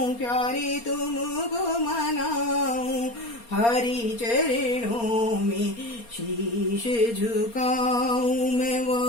प्यारे तुमको मनाऊं, हरि चरणों में शीश झुकाऊं, मैं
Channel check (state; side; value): late; right; 4.3 ms